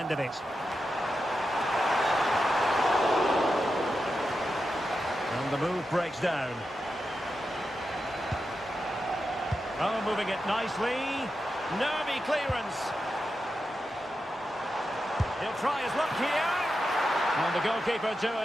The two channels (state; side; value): normal; both; correlation 0.89